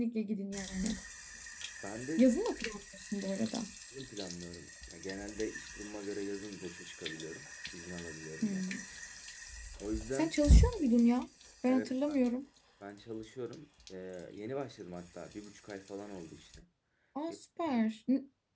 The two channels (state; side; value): identical; both; correlation 1.00